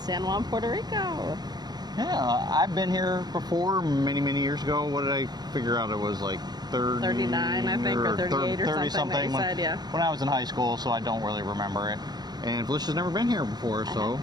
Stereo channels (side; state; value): left; late; 0.20 ms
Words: Juan, Puerto Rico. Yeah, I've been here before many years ago. What did I figure out? It was like 39, I think, or 38 or 30 something that you said, yeah. When I was in high school, so I don't really remember it. And Felicia's never been here before, so